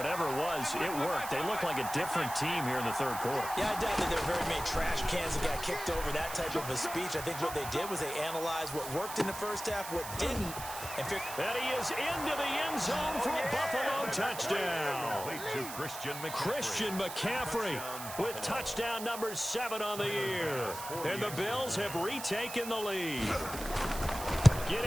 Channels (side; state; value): right; noise; hiss, 10 dB below the sound